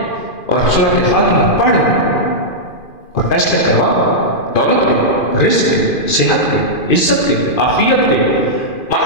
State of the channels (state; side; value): late; right; 2.5 ms